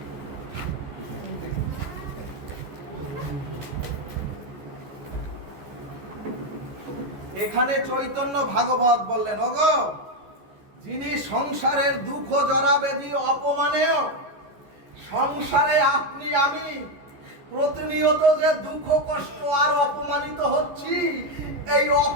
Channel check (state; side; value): late; left; 14 ms